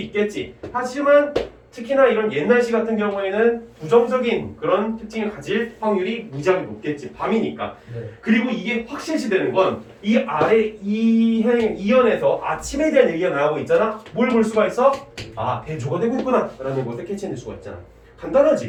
하지만 특히나 이런 옛날 시 같은 경우에는 부정적인 그런 특징을 가질 확률이 무지하게 높겠지. 밤이니까. 네. 그리고 이게 확실시되는 건 이 아래 이연에서 아침에 대한 얘기가 나오고 있잖아. 뭘 볼 수가 있어? 아, 대조가 되고 있구나 라는 것을 캐치해낼 수가 있잖아.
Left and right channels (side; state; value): both; identical; correlation 1.00